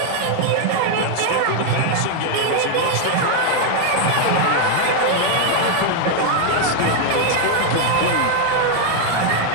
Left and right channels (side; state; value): both; different; correlation 0.01